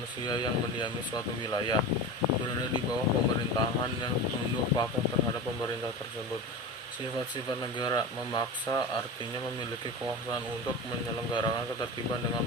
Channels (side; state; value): both; normal; correlation 0.27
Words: yang mendiami suatu wilayah, berada di bawah pemerintahan yang tunduk patuh terhadap pemerintah tersebut. Sifat-sifat negara: memaksa, artinya memiliki kekuasaan untuk menyelenggarakan ketertiban dengan